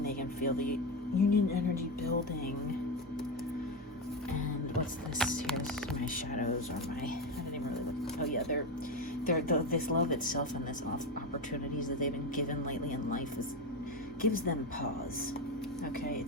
they can feel the union energy building. And what's this here? This is my shadows, or I didn't even really look. Oh yeah, this love itself and this opportunities that they've been given lately in life gives them pause. Okay,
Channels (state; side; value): normal; both; correlation 0.14